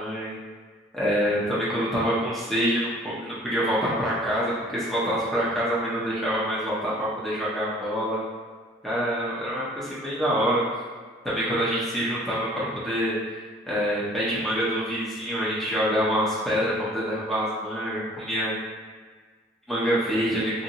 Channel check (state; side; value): normal; both; correlation 0.53